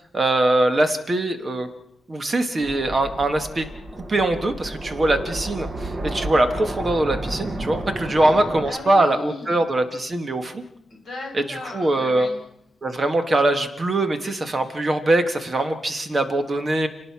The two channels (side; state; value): both; normal; correlation 0.89